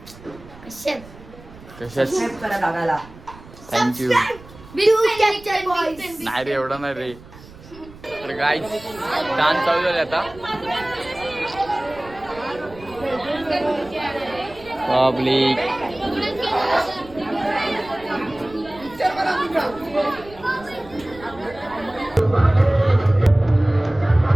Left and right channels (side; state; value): right; noise; rumble, 20 dB below the sound